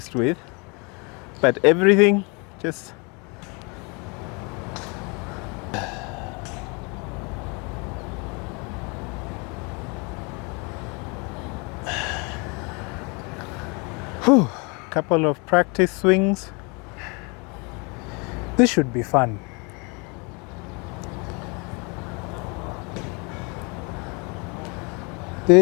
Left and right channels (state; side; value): quieter; right; 30.8 dB